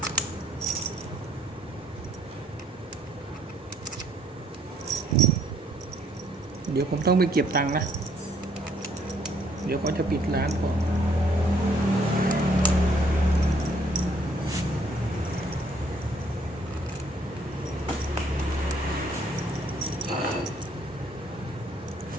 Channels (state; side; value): normal; both; correlation 0.65